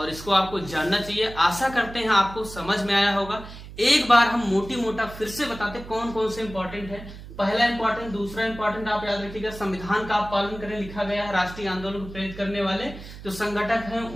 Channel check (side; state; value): right; noise; hum, 14 dB below the sound